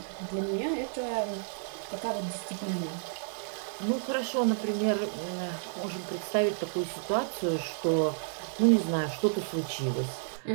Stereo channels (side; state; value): left; silent; digital silence